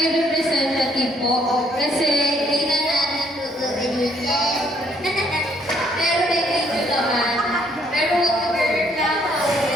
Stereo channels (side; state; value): both; normal; correlation 0.67